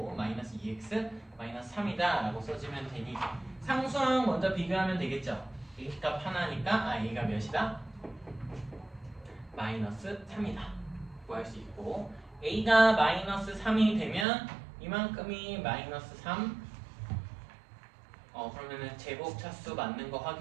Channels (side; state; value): left; drops out; at 14.2 s